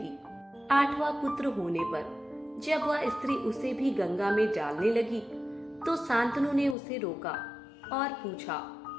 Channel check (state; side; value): drops out; right; at 6.8 s